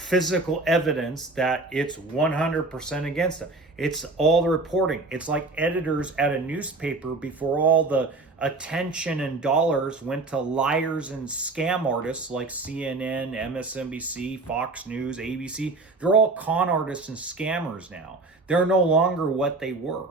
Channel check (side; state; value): left; quieter; 3.4 dB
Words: evidence that it's 100% against them. It's all the reporting. It's like editors at a newspaper before all the attention and dollars went to liars and scam artists like CNN, MSNBC, Fox News, ABC. They're all con artists and scammers now. They're no longer what they were.